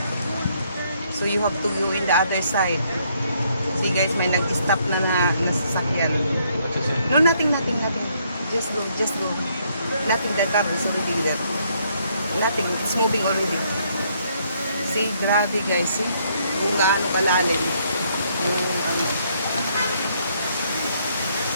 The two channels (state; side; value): inverted; both; correlation -0.70